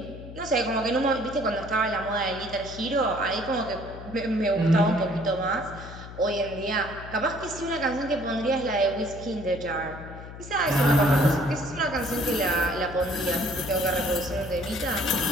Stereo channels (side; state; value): left; noise; hum, 13 dB below the sound